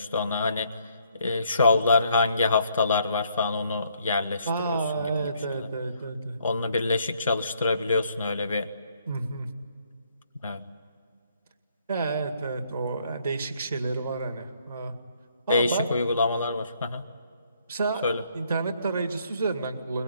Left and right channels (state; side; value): inverted; both; correlation -0.68